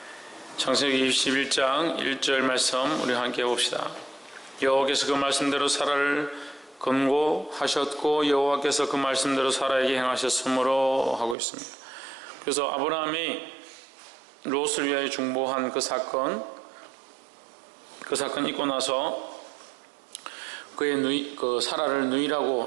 창세기 21장 1절 말씀 우리 함께 봅시다. 여호와께서 그 말씀대로 사라를 권고하셨고 여호와께서 그 말씀대로 사라에게 행하셨으므로 하고 있습니다. 그래서 아브라함이 롯을 위하여 중보한 그 사건 있고 나서 그 사라를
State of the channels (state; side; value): drops out; left; at 11.4 s